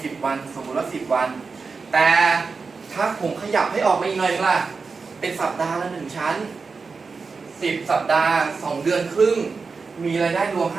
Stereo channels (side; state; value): left; quieter; 4.7 dB